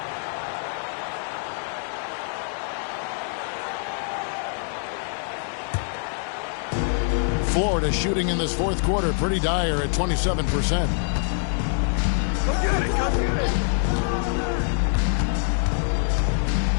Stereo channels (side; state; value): right; silent; 62 dB below the other